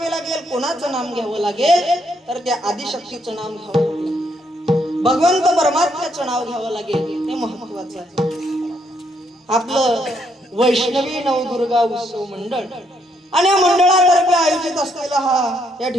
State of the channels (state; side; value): normal; both; correlation 0.74